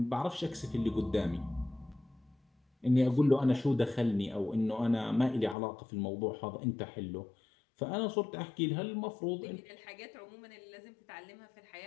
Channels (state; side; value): drops out; right; at 5.6 s